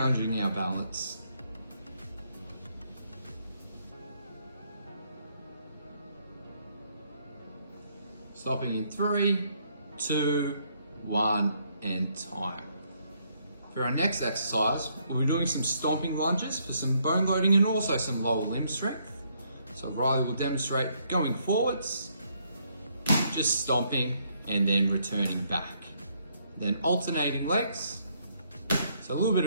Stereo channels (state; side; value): inverted; both; correlation -0.71